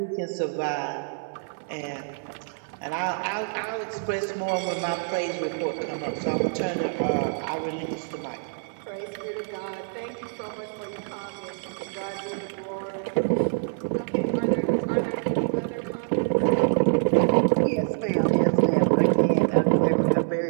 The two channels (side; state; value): left; silent; 61 dB below the other